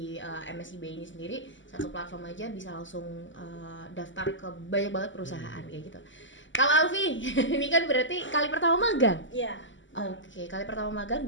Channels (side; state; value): right; late; 0.55 ms